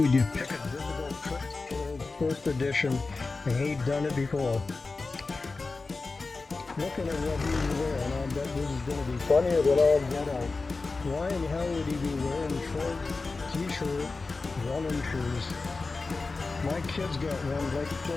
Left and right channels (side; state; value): right; quieter; 3.9 dB